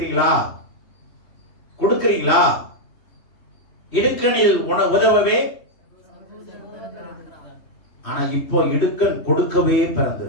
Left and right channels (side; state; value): right; late; 2.7 ms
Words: கொடுக்கிறீங்களா? இடுக்கணில் உதவவே, ஆனா இப்போ இடுக்கன் கொடுக்கவே